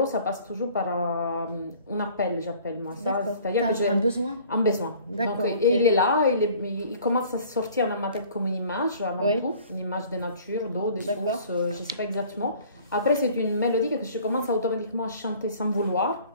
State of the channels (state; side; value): inverted; both; correlation -0.52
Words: ça passe toujours par un appel, j'appelle moi ça. C'est-à-dire que j'ai un besoin. Un besoin. Donc, et il est là, il commence à sortir dans ma tête comme une image, avant tout. Une image de nature, d'eau, de source, je ne sais pas exactement. Après, c'est une mélodie que je commence automatiquement à chanter sans vouloir.